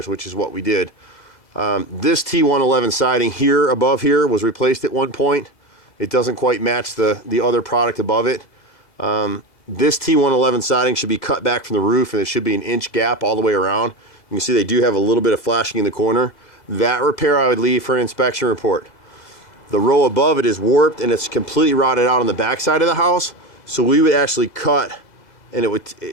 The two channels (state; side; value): late; right; 2.0 ms